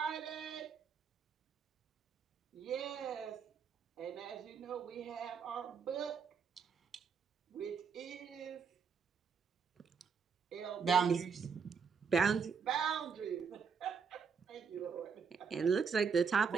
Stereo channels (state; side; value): quieter; left; 6.1 dB